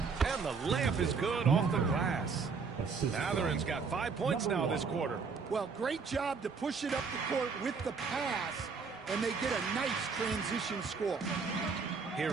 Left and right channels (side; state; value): left; quieter; 5.2 dB